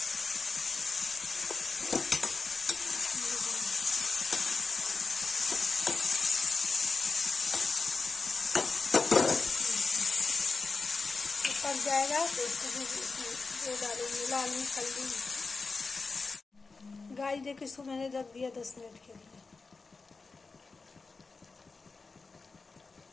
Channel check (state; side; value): quieter; right; 4.2 dB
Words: पक जाएगा तो इसको डालेंगे लाल मिर्च हल्दी। गाइस देखो, इसको मैंने रख दिया 10 मिनट के लिए।